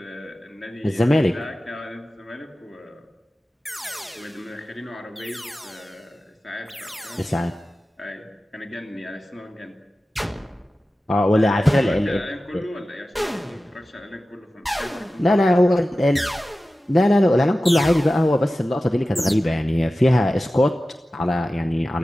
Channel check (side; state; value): both; normal; correlation 0.95